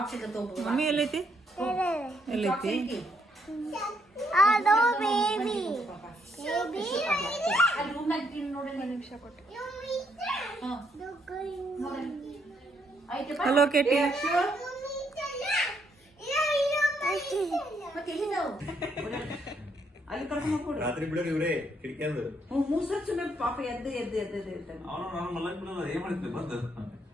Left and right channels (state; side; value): normal; both; correlation 0.73